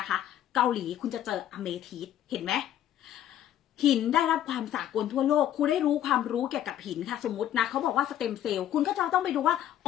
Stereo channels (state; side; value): quieter; right; 11.5 dB